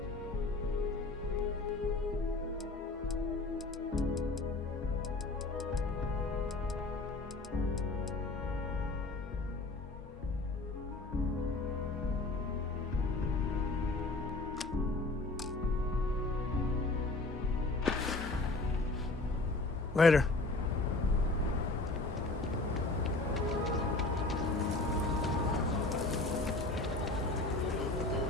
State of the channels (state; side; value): quieter; right; 3.2 dB